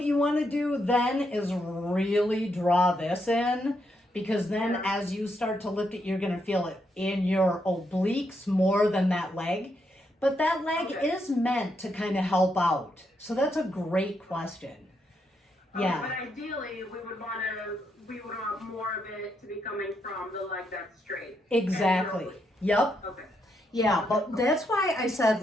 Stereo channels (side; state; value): both; normal; correlation 0.79